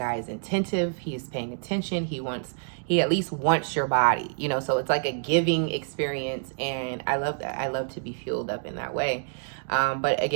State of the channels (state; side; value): silent; left; digital silence